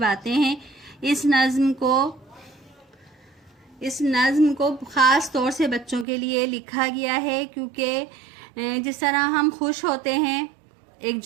हैं। इस नज़्म को ख़ास तौर से बच्चों के लिए लिखा गया है, क्योंकि जिस तरह हम खुश होते हैं, एक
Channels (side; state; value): left; drops out; at 6.1 s